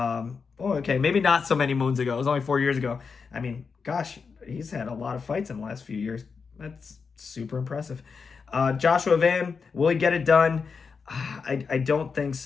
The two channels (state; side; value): quieter; right; 5.4 dB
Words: not so many moons ago. It was only 4 years ago. He's had a lot of fights in the last few years. That's super impressive. Joshua Van, will he get it done? I don't think